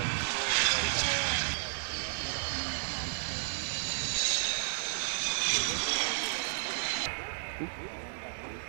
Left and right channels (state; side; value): silent; left; digital silence